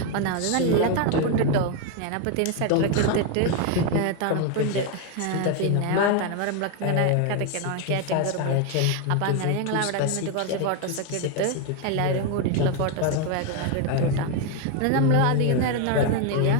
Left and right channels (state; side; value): different; both; correlation 0.01